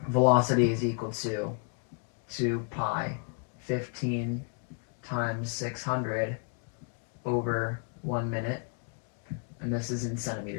velocity is equal to 2 pi 15 times 600 over 1 minute, and this is in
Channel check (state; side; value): quieter; right; 38.8 dB